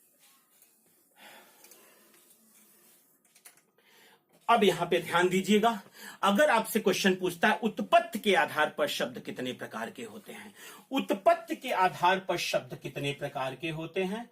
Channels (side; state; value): both; identical; correlation 1.00